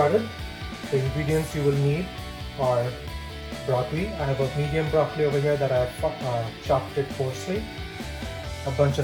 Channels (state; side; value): identical; both; correlation 1.00